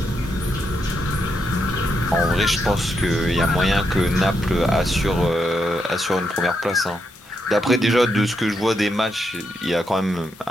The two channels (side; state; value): both; normal; correlation 0.81